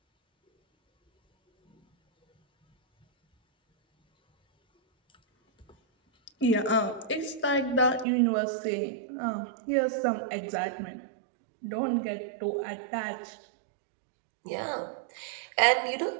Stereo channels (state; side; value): drops out; left; at 8.1 s